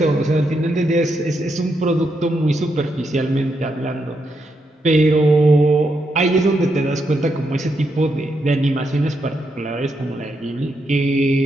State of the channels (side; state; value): both; normal; correlation 0.81